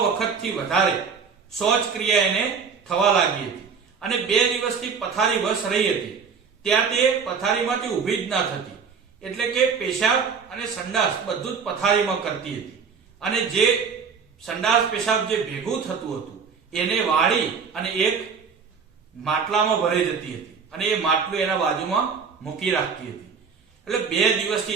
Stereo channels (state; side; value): quieter; left; 5.9 dB